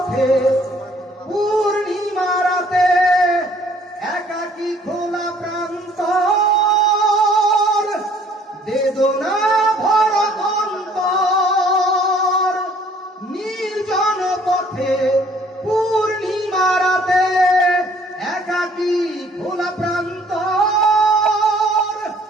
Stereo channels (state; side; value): normal; both; correlation 0.58